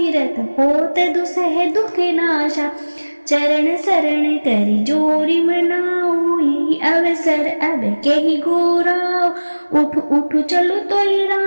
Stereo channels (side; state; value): both; inverted; correlation -1.00